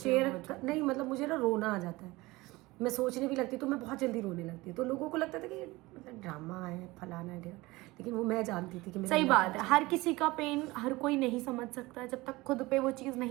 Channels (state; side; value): quieter; left; 20.9 dB